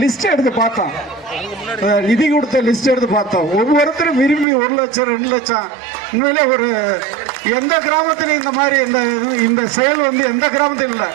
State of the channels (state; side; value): drops out; left; at 4.5 s